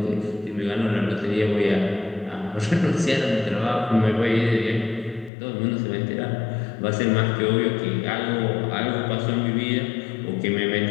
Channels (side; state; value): right; drops out; at 5.3 s